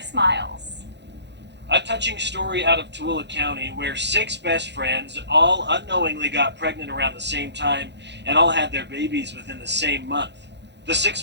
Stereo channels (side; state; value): left; late; 0.50 ms